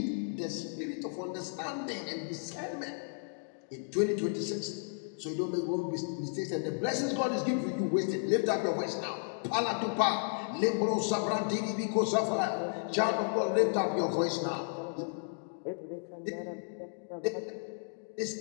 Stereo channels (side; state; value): right; silent; digital silence